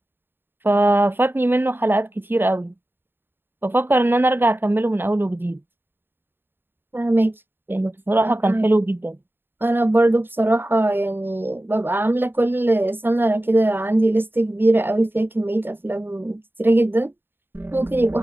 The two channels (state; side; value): late; left; 0.10 ms